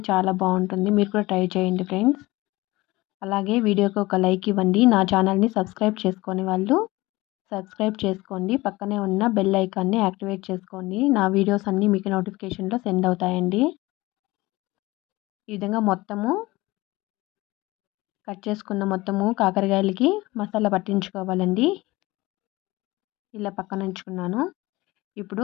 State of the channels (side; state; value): right; quieter; 20.4 dB